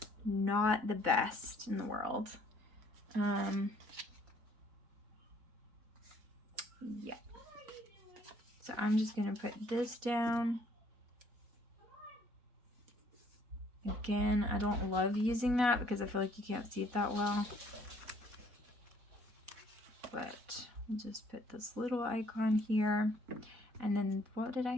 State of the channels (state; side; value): late; left; 4.1 ms